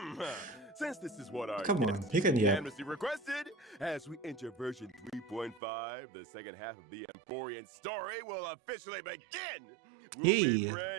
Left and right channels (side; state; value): left; drops out; at 5.6 s